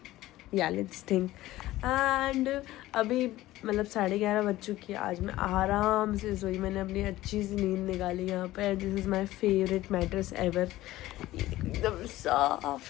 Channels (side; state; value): right; quieter; 16.3 dB